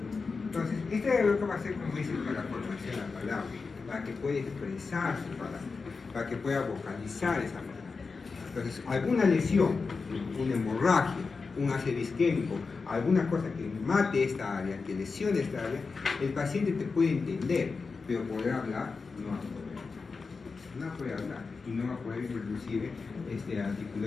Entonces, este área lo que va a ser, como dice, para la formación de la palabra, para que pueda expresar su palabra, para que pueda vocalizar esa palabra. Entonces, alguna lesión, una hemorragia, un ácido isquémico, alguna cosa que mate esta área, que lesione esta área, el paciente te puede entender, pero poder hablar no va a poder. No puede hablar y no va a poder inclusive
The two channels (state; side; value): quieter; right; 4.6 dB